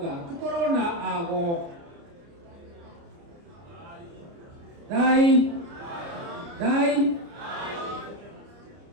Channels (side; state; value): left; late; 29 ms